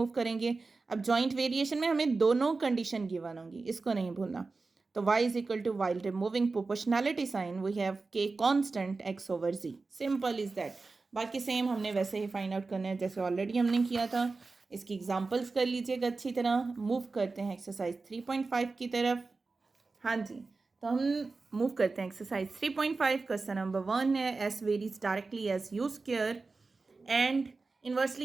करेंगे। अब जॉइंट वेरिएशन में हमें दोनों कंडीशन गिवन होंगी, इसको नहीं भूलना। तो y is equal to, while removing proportionality sign we have k constant x over z। Simple is that. बाकी सेम हमने वैसे ही फाइंड आउट करना है जैसे ऑलरेडी हमने किया था। इसकी एग्जांपल्स कर लीजिएगा अच्छी तरह। मूव करते हैं एक्सरसाइज 3.5 की तरफ। हाँ जी, तो हम मूव करते हैं एक्सरसाइज 3.5। क्वेश्चन नंबर 1 है, S varies directly as U square and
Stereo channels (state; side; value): quieter; left; 3.9 dB